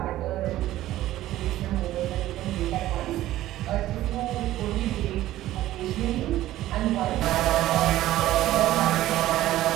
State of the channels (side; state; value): left; quieter; 14.6 dB